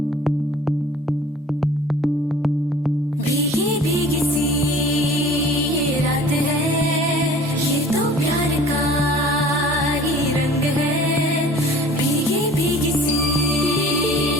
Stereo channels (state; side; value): normal; both; correlation 0.48